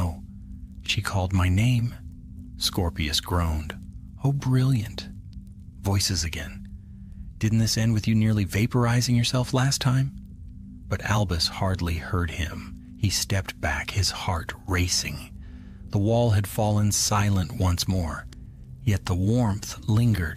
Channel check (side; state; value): both; identical; correlation 1.00